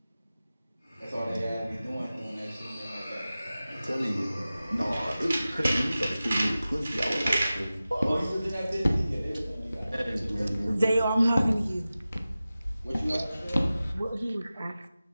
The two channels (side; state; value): both; inverted; correlation -0.96